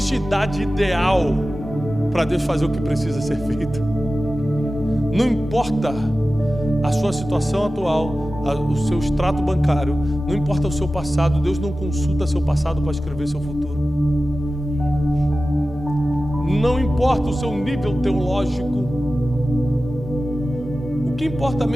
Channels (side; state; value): both; normal; correlation 0.95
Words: idade ideal para Deus fazer o que precisa ser feito. Não importa a sua situação atual, o seu extrato bancário, não importa o seu passado, Deus não consulta seu passado para escrever seu futuro. Não importa o seu nível teológico. O que importa